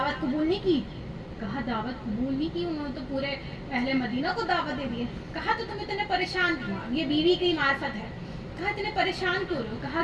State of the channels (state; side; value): identical; both; correlation 1.00